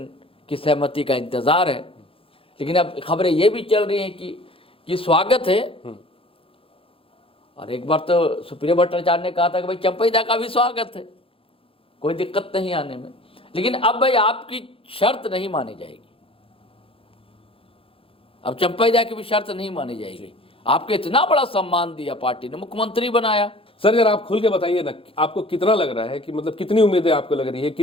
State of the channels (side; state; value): right; late; 0.27 ms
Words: की सहमति का इंतजार है। लेकिन अब खबरें ये भी चल रही हैं कि स्वागत है, और एक बार तो सुप्रिया भट्टाचार्य ने कहा था कि भाई चंपई दा का भी स्वागत है, कोई दिक्कत नहीं आने में। लेकिन अब भाई आपकी शर्त नहीं मानी जाएगी, अब चंपई दा की भी शर्त नहीं मानी जाएगी। आपको इतना बड़ा सम्मान दिया पार्टी ने, मुख्यमंत्री बनाया। सर जरा आप खुल के बताइए ना, आपको कितना लग रहा है कि मतलब कितनी उम्मीदें आपको लग रही है,